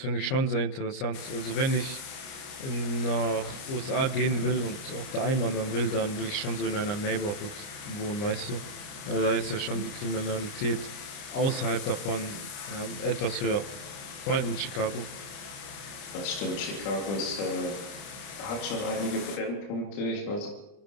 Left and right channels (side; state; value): right; late; 30 ms